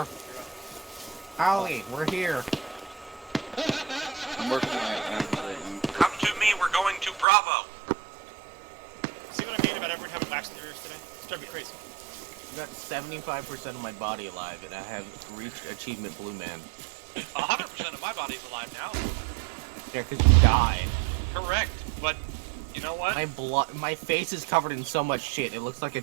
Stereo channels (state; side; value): drops out; left; at 7.2 s